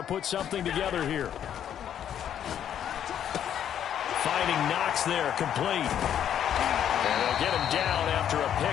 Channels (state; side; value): quieter; right; 9.8 dB